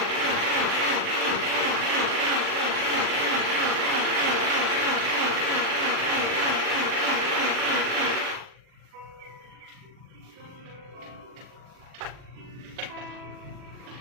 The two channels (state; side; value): late; left; 40 ms